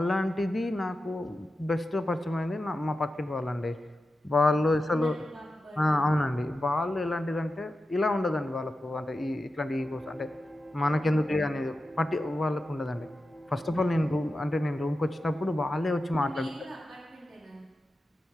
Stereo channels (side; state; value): both; normal; correlation 0.91